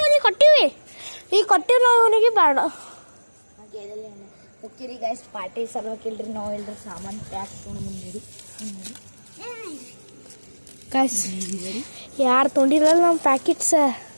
ಕೊಟ್ಟಿವಿ. ಈಗ ಕೊಟ್ಟಿವಿ ನಾವು ಅವನಿಗೆ ಬೇಡ. ಓಕೆ ರೀ ಗೈಸ್, ಪಾರ್ಟಿ ಸಲುವಾಗಿಲ್ರಿ ನಾವು ಇಲ್ರಿ ಸಾಮಾನು ಪ್ಯಾಕ್ ತೊಗೊಂಡು ಬಂದಿರಿ. ಗೈಸ್ ಯಾರು ತೊಗೊಂಡಿರಲ್ಲ ನಮ್ಮ ಪ್ಯಾಕೆಟ್ಸ್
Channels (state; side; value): inverted; both; correlation -1.00